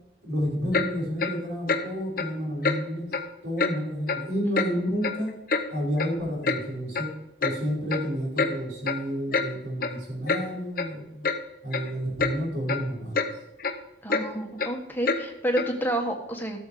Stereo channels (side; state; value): both; normal; correlation 0.49